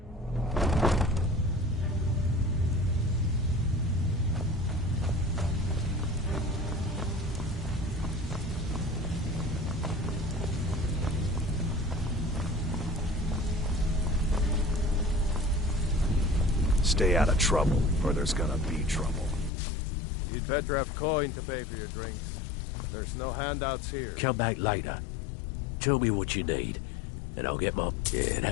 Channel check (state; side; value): drops out; right; at 19.5 s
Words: Stay out of trouble, or there's gonna be trouble. You'd better have coin to pay for your drinks. There's no handouts here. Come back later. Tell me what you need, and I'll get my... Yeah,